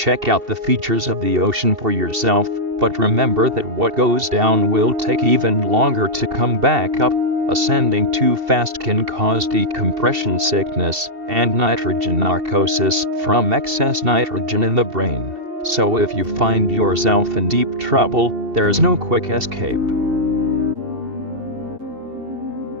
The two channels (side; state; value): left; late; 2.7 ms